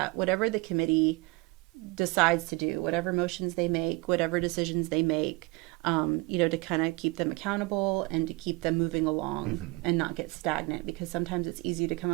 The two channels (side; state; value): left; quieter; 24.5 dB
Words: whatever the committee decides to do, whatever motions they make, whatever decisions they make, to kind of keep them accountable and to keep them moving along and not get stagnant, because sometimes it's easy to come